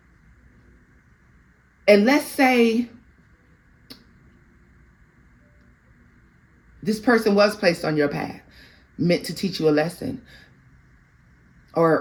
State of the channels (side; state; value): both; identical; correlation 1.00